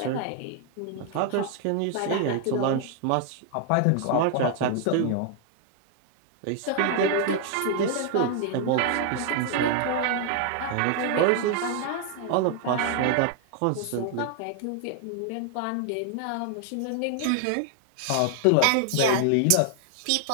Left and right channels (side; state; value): both; different; correlation 0.00